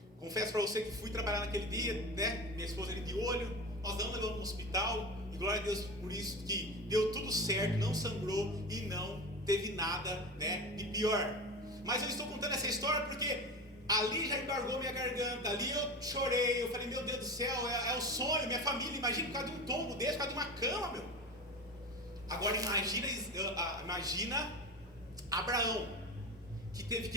Confesso para você que fui trabalhar naquele dia, né? Minha esposa ali de olho, nós não levamos no hospital, e glória a Deus por isso, que deu tudo certo, não sangrou e não teve nada, né, de pior. Mas eu estou contando essa história porque ali já embargou minha garganta, ali eu chorei, eu falei, meu Deus do céu, é o sonho, minha família, imagina por causa de um tombo desse, por causa de uma cama, meu. Agora imagina Abraão, que teve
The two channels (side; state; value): both; normal; correlation 0.27